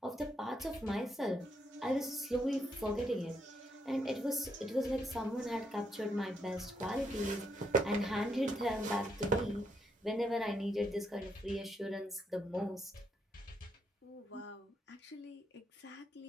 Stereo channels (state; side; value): normal; both; correlation 0.78